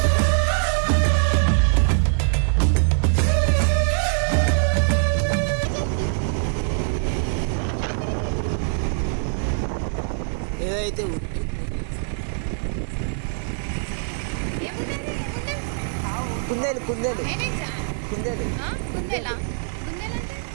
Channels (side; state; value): left; silent; digital silence